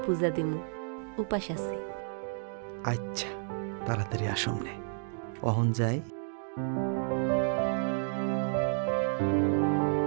পূজা দিমু, উপাস আছে। আচ্ছা, তাড়াতাড়ি আসুম নে। অহন যাই।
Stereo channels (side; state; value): left; silent; 57 dB below the other